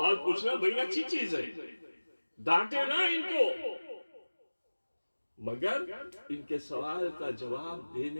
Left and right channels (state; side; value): inverted; both; correlation -1.00